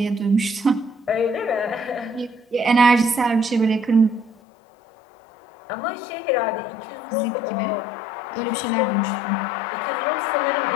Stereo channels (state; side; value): drops out; right; at 4.4 s